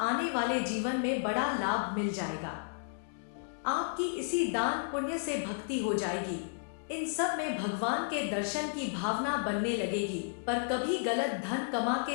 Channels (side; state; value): right; silent; digital silence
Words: वाले जीवन में बड़ा लाभ मिल जाएगा। आपकी इसी दान पुण्य से भक्ति हो जाएगी। इन सब में भगवान के दर्शन की भावना बनने लगेगी। पर कभी गलत धन कमा